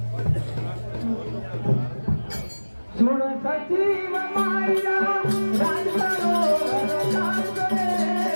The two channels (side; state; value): both; inverted; correlation -1.00